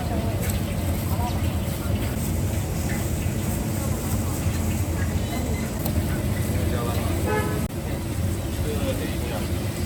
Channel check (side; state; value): both; identical; correlation 1.00